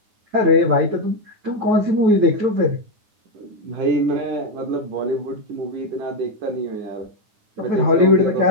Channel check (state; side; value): late; left; 9.7 ms